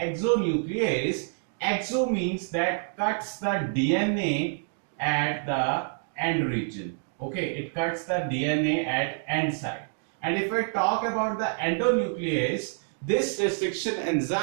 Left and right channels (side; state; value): left; silent; digital silence